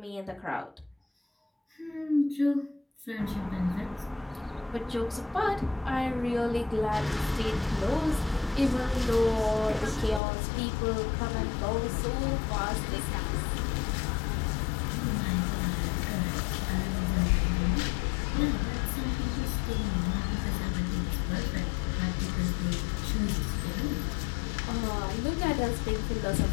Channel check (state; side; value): drops out; right; at 10.2 s